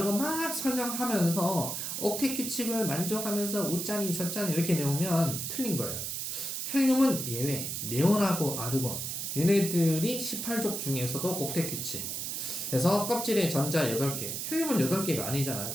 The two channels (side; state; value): right; noise; hiss, 4 dB below the sound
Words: 막 설명하면서 옥텟 규칙을 만족하면서 우짠이 저짠이 이렇게 내오면 틀린 거예요. 헬륨은 예외, 네온하고 아르곤 얘네들이 18족 중에서도 옥텟 규칙. 그래서 껍질에 전자 8개, 헬륨은 8개가 아니잖아요.